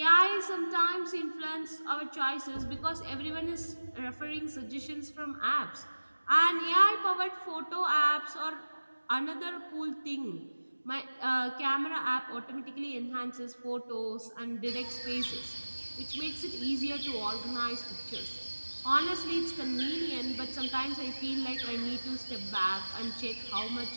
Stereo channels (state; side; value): inverted; both; correlation -1.00